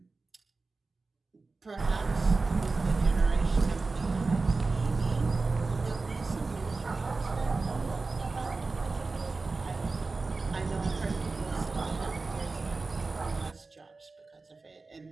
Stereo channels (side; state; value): left; quieter; 3.8 dB